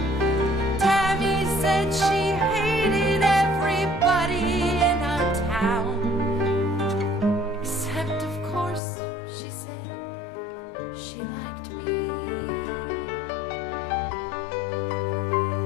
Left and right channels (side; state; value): right; drops out; at 8.8 s